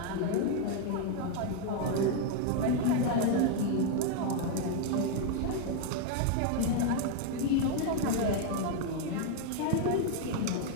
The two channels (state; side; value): different; both; correlation 0.00